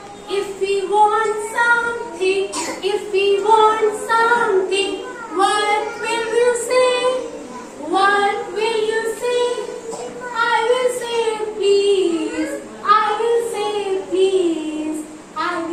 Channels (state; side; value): identical; both; correlation 1.00